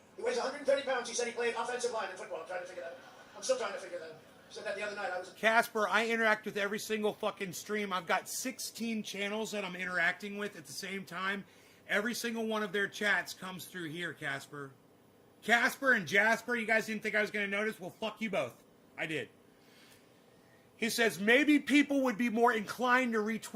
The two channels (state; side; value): identical; both; correlation 1.00